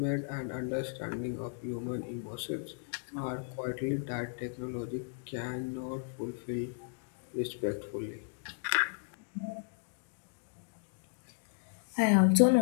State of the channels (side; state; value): right; silent; digital silence